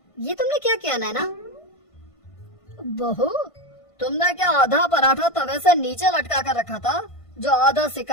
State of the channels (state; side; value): late; right; 1.5 ms